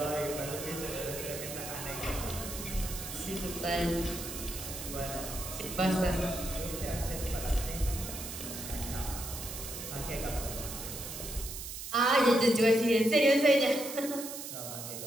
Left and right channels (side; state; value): right; noise; hiss, 8 dB below the sound